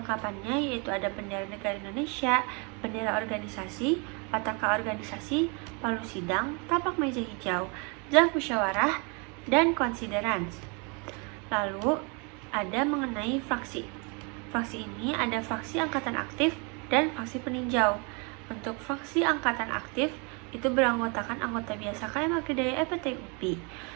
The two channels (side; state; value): left; quieter; 32.6 dB